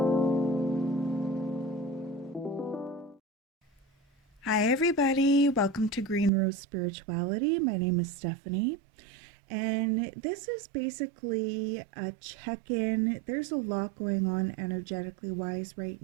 everybody. Welcome to Green Rose Spirituality. My name is Stephanie, and this is basically a check in. There's a lot going on energetically wise right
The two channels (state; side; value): drops out; left; at 6.3 s